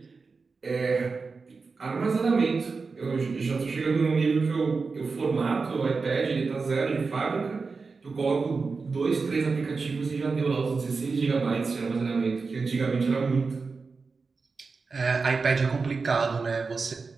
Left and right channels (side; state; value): left; quieter; 4.5 dB